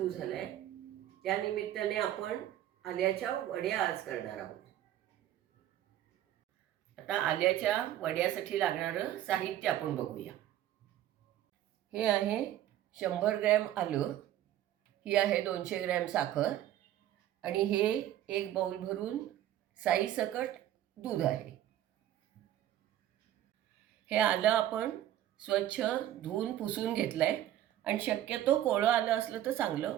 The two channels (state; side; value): quieter; left; 12.5 dB